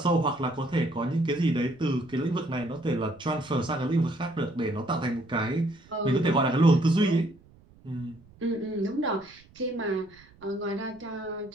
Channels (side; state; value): right; noise; rumble, 27 dB below the sound